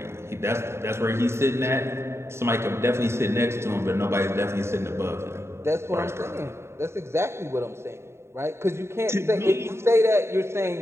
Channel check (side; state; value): left; late; 0.13 ms